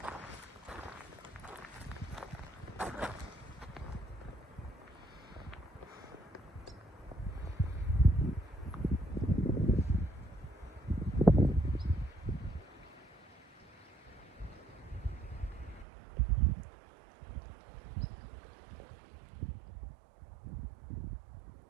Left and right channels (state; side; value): drops out; left; at 15.9 s